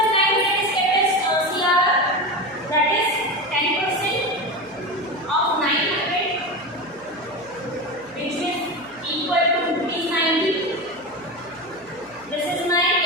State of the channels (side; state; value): right; noise; hum, 29 dB below the sound